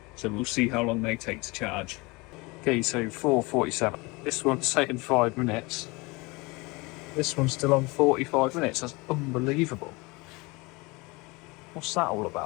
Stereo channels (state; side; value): quieter; right; 25.3 dB